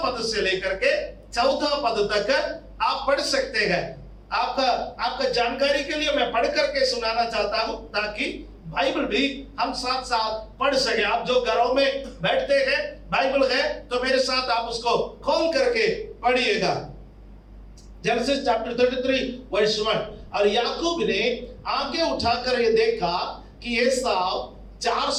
से लेकर के चौथा पद तक आप पढ़ सकते हैं। आपका जानकारी के लिए मैं पढ़ करके सुनाना चाहता हूं, ताकि बाइबल भी हम साथ साथ पढ़ सके। आप जो घरों में बैठते हैं, बाइबल है तो मेरे साथ आप उसको खोल करके पढ़िएगा। Genesis chapter 33 verse 1। और याकूब ने आंखें उठाकर ये देखा कि एसाव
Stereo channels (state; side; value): identical; both; correlation 1.00